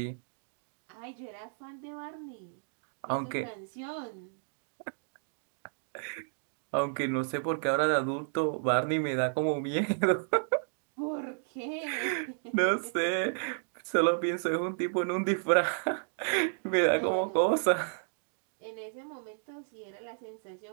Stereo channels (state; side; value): silent; left; digital silence